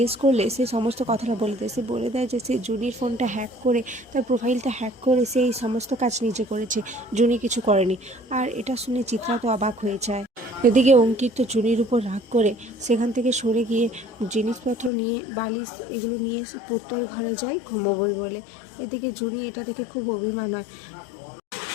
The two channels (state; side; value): drops out; right; at 14.9 s